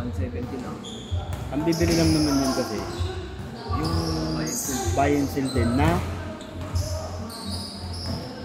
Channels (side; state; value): both; identical; correlation 1.00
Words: 170 lang. Ang bibili lang naman yun kasi yung buy and sell din na